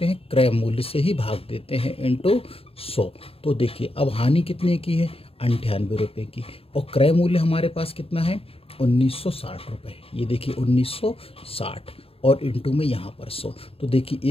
हैं? क्रय मूल्य से ही भाग देते हैं इनटू 100। तो देखिए अब हानि कितने की है? 98 रुपये की, और क्रय मूल्य हमारे पास कितना है? 1960 रुपये। ये देखिए 1960 और इनटू में यहाँ पर 100। तो देखिए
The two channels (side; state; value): right; late; 0.28 ms